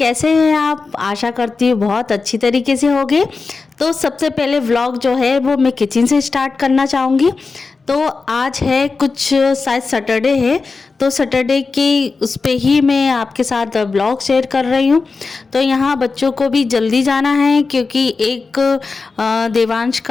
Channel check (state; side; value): quieter; right; 4.3 dB